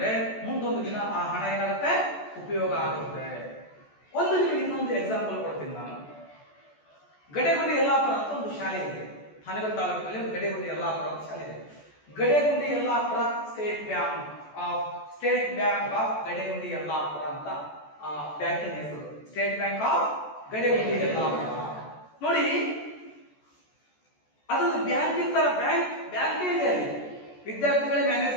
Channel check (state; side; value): late; right; 14 ms